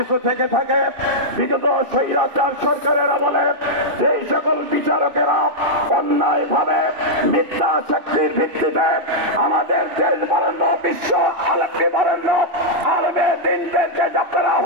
থেকে থাকে বিগত স্বৈরাচার সরকারের আমলে যেই সকল বিচারকেরা অন্যায় ভাবে মিথ্যা শক্তির ভিত্তিতে আমাদের দেশ বরেণ্য বিশ্ব আলমী বরেণ্য আলমে দিনদেরকে আপনারা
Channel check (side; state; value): left; late; 2.6 ms